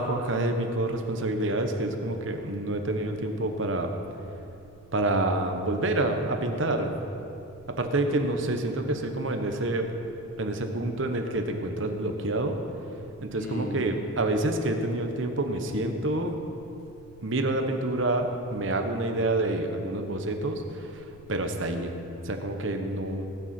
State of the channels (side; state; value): right; noise; rumble, 25 dB below the sound